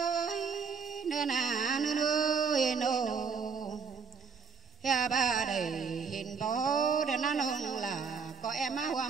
nơ nà nơ nơ nô ya ba đầy hình bó để nó nông là có em á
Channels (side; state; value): left; quieter; 5.7 dB